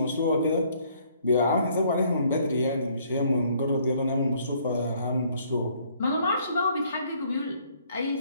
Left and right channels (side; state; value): both; inverted; correlation -0.63